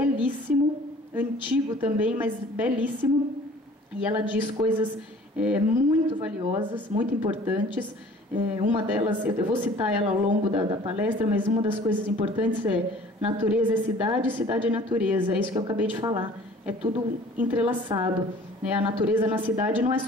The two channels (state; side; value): normal; both; correlation 0.50